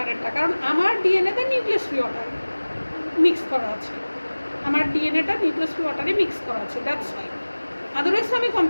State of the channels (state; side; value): inverted; both; correlation -1.00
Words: কারণ আমার ডিএনএতে নিউক্লিয়াস ফ্রি ওয়াটার মিক্স করা আছে, আমার ডিএনএটা নিউক্লিয়াস ফ্রি ওয়াটারে মিক্স করা আছে, দ্যাটস ওয়াই। আদারওয়াইজ আমি